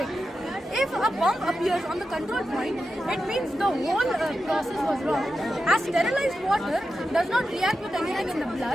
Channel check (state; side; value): normal; both; correlation 0.90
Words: If a bump appears on the control point, it means the whole process was wrong. As sterilized water does not react with anything in the